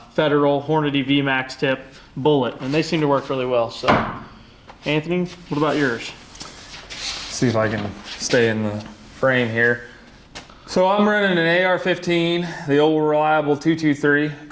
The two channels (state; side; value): identical; both; correlation 1.00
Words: Hornady VMAX tip bullet, and they seem to work really well. So Anthony, what about yours? See if I can stay in the frame here. So I'm running an AR-15, the old reliable 223.